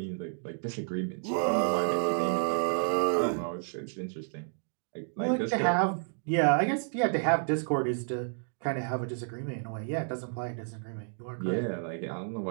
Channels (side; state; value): left; silent; digital silence